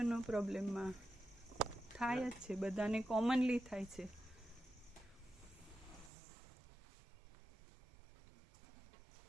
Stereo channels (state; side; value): drops out; left; at 6.1 s